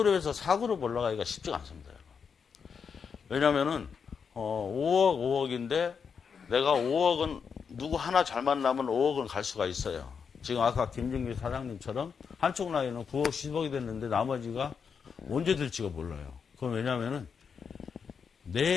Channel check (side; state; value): right; quieter; 6.3 dB